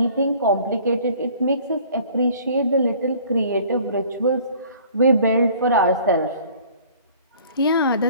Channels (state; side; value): inverted; both; correlation -0.52